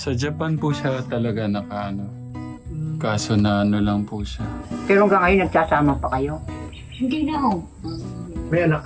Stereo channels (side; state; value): both; identical; correlation 1.00